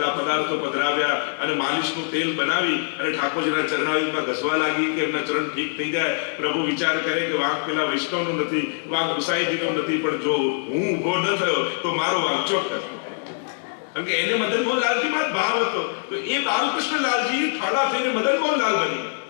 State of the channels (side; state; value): right; silent; 63 dB below the other